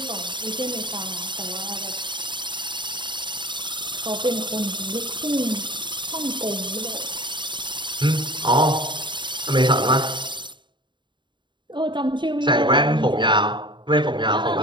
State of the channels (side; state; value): left; late; 0.23 ms